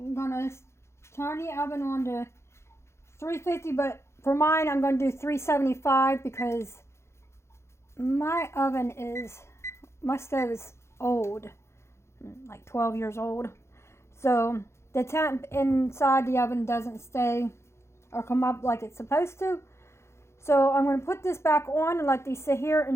gonna turn the oven on to 350, but for mine I'm gonna do 375 because my stove is old, like 12 years old. So the temp inside the oven doesn't stay or come up like it's supposed to. So I'm going to put this back on and let these sit here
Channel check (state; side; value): late; right; 0.13 ms